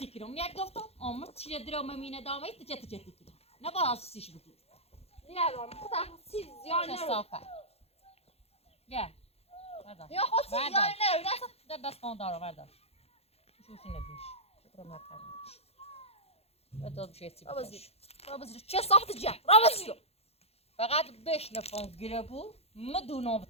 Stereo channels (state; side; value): late; right; 0.29 ms